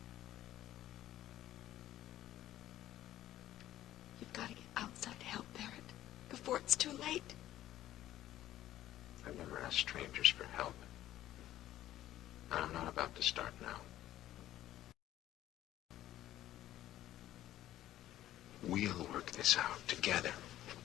You've got to get outside help, Barrett, before it's too late. I've never asked strangers for help. And I'm not about to start now. We'll work this out together.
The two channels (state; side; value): quieter; right; 13.5 dB